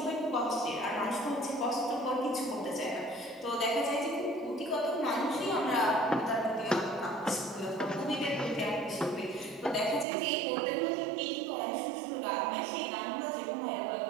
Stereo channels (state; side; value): drops out; left; at 10.1 s